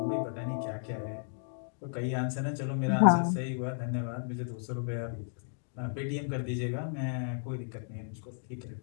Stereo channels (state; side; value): silent; right; digital silence